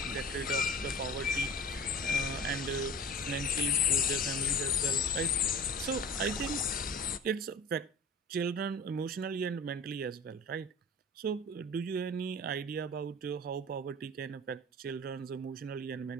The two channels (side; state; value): both; normal; correlation 0.39